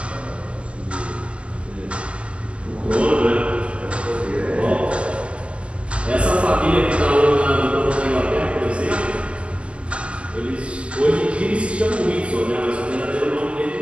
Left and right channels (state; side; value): late; left; 0.060 ms